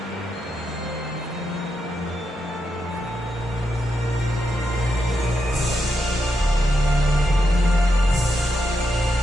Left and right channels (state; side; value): normal; both; correlation 0.84